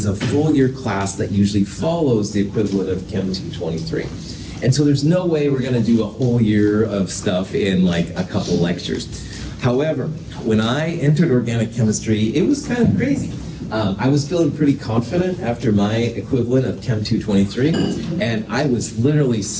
a full year class that usually follows the equivalent of Chem 223. And so there's no way we're going to do a whole year of stuff in like a couple lectures. However, when I entered organic chemistry, it was kind of crazy. I was feeling pretty confident after my equivalent of Chem 223, and I was literally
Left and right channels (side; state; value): both; identical; correlation 1.00